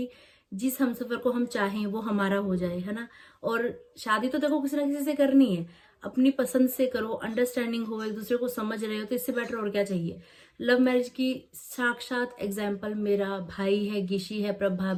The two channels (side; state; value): both; identical; correlation 1.00